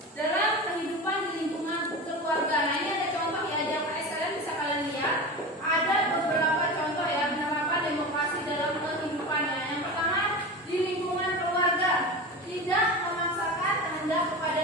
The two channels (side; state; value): both; normal; correlation 0.28